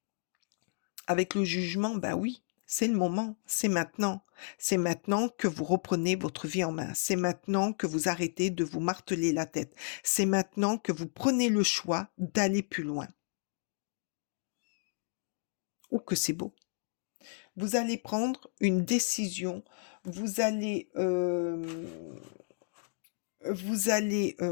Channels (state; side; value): silent; right; digital silence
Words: Avec le jugement, bah oui, c'est le moment, c'est maintenant. C'est maintenant que vous reprenez votre vie en main. C'est maintenant que vous arrêtez de vous marteler la tête. C'est maintenant que vous prenez le choix d'aller plus loin. Oh que c'est beau. Vous allez prendre une décision, vous allez,